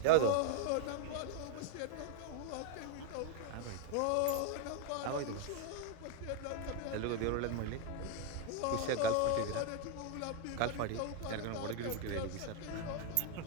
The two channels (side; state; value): both; different; correlation 0.00